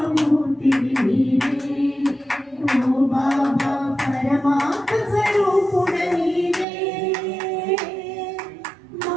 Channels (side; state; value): left; drops out; at 6.7 s